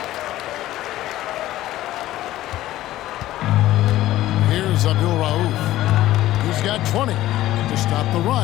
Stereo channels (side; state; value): right; quieter; 14.9 dB